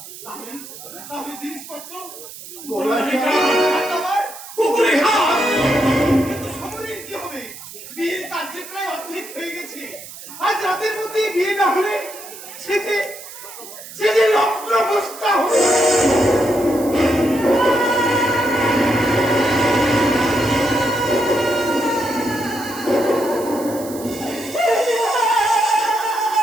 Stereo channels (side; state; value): right; noise; hiss, 14 dB below the sound